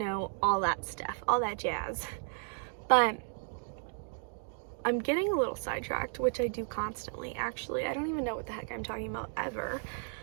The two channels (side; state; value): left; silent; 55 dB below the other